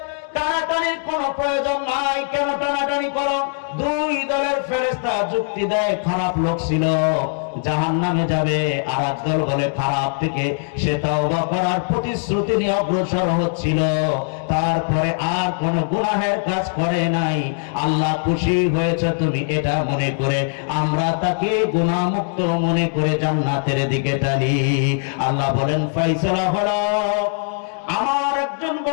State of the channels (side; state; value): right; silent; digital silence